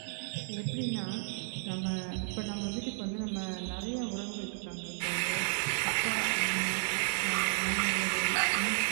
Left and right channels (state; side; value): silent; left; digital silence